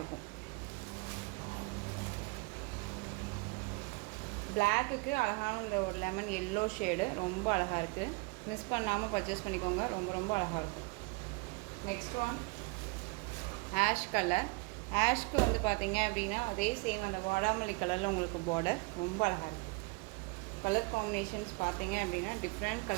இருக்கும். பிளாக்குக்கு அழகான இந்த ஒரு லெமன் எல்லோ ஷேடு ரொம்ப அழகாக இருக்குது. மிஸ் பண்ணாமல் பர்ச்சேஸ் பண்ணிக்கோங்க, ரொம்ப ரொம்ப அழகாக இருக்கும். Next one ash colour. ஆஷ்க்கு வந்து பார்த்திங்க அப்படின்னா அதே சேம் அந்த வாடாமல்லி கலரில் உங்களுக்கு பார்டர் ரொம்ப அழகாக இருக்குது. கலர் காம்பினேஷன்ஸ் பார்த்திங்க அப்படின்னா டிஃப்ரெண்ட்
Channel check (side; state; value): left; quieter; 28.5 dB